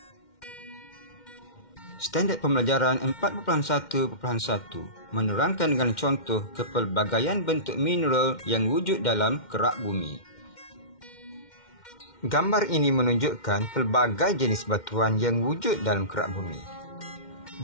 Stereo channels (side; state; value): right; late; 2.1 ms